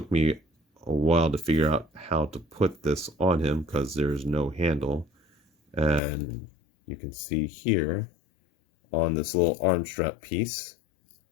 me a while to figure out how to put this on him because there's no handle. And you can see here on this little arm strap piece,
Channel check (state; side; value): drops out; right; at 6.0 s